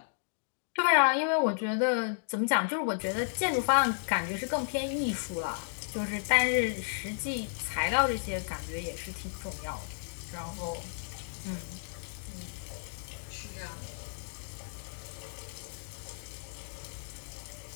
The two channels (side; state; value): right; silent; digital silence